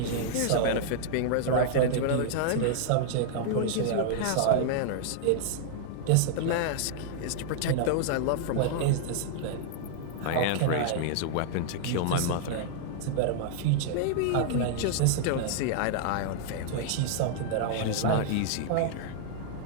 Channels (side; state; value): both; different; correlation -0.01